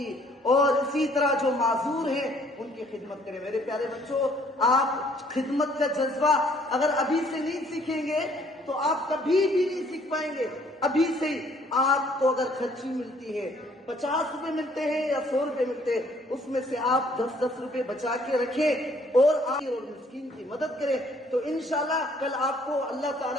اور اسی طرح جو معذور ہیں ان کی خدمت کریں۔ میرے پیارے بچوں، آپ خدمت کا جذبہ اگر ابھی سے نہیں سیکھیں گے تو آپ کبھی بھی نہیں سیکھ پائیں گے۔ ابھی سے ہی آپ کو اگر خرچی ملتی ہے، 50 روپے ملتے ہیں یا 100 روپے ملتے ہیں، اس میں سے آپ 10 روپے بچا کے رکھیں اور آپ مسکین کی مدد کریں، تو انشاءاللہ کل آپ کو اللہ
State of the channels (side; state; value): both; normal; correlation 0.62